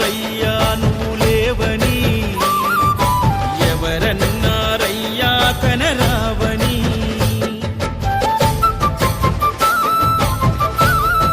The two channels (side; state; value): both; identical; correlation 1.00